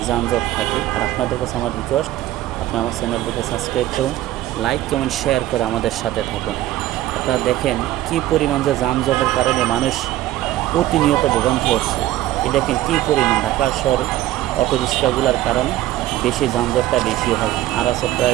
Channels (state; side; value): quieter; left; 14.6 dB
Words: যানজট থাকে। আর আপনাদের কাছে আমার রিকোয়েস্ট, আপনি আমার চ্যানেলটিকে সাবস্ক্রাইব করুন, লাইক কমেন্ট শেয়ার করে আমাদের সাথে থাকুন। আপনারা দেখেন কী পরিমাণ যে যানজটের কারণে মানুষ প্রতিনিয়ত ভোগান্তি হচ্ছে। এই দেখেন কী পরিমাণ ঢাকা শহরে অটো রিক্সাগুলোর কারণে বেশি যানজটটা বেশি হয়। আর আছে